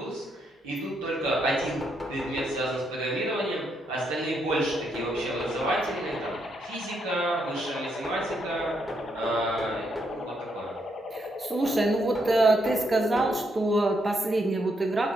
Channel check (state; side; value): normal; both; correlation 0.77